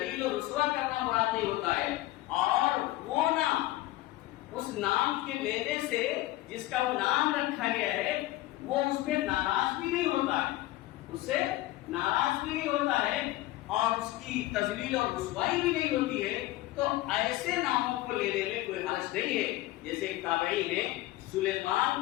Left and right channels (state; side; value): quieter; right; 17.0 dB